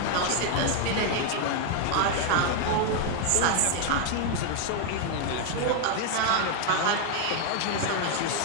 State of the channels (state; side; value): different; both; correlation 0.00